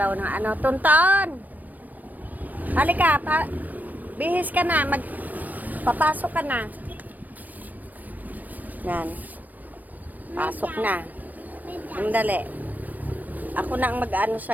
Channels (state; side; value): late; left; 0.084 ms